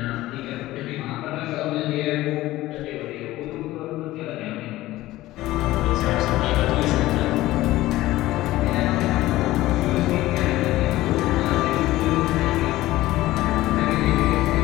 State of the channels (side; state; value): right; quieter; 16.7 dB